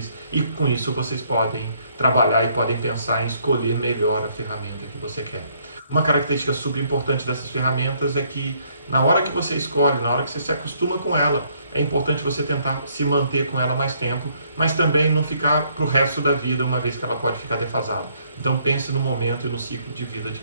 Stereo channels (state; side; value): inverted; both; correlation -0.68